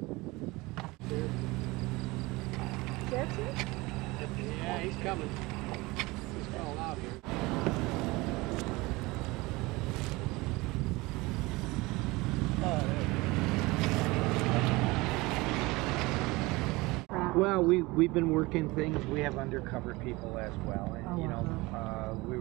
That's it? Yeah, he's coming. He's calling out here. Well, we've been working things. We have undercover people as well, and you know, we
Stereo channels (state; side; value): quieter; left; 22.4 dB